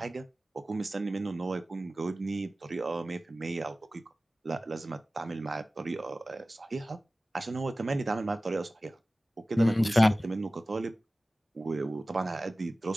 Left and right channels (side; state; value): both; normal; correlation 0.97